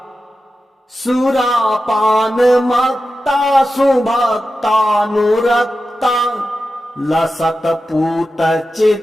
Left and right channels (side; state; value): both; normal; correlation 0.92